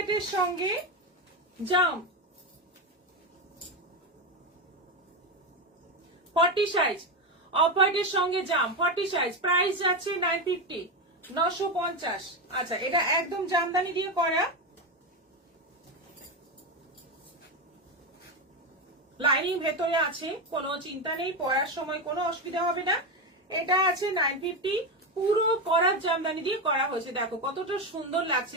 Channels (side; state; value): both; normal; correlation 0.13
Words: সঙ্গে জাম, 40 সাইজ, অফ হোয়াইটের সঙ্গে জাম 40 সাইজ, প্রাইস যাচ্ছে 950, 950। আচ্ছা, এটা একদম জামদানি দিয়ে করা, লাইনিং ভেতরে আছে, কোনো চিন্তা নেই, পরার সময় কোনো অসুবিধা হবে না। এটা আছে 950, পুরো করার জামদানি দিয়ে করা হয়েছে, দেখো কতটা সুন্দর লাগছে